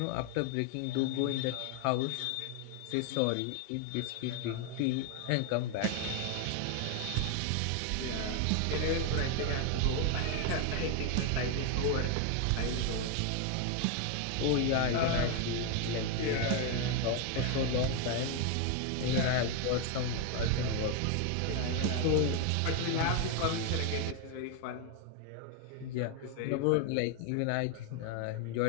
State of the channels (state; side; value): different; both; correlation 0.01